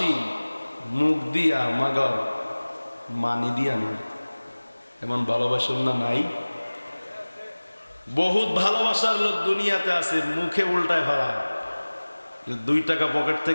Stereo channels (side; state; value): both; inverted; correlation -1.00